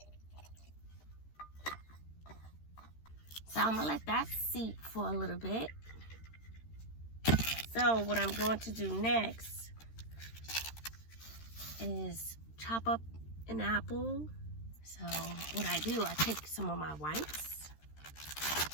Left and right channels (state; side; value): late; right; 13 ms